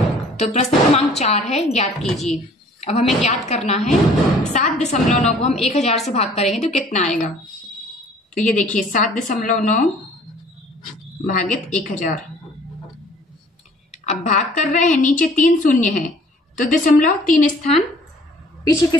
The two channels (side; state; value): both; normal; correlation 0.54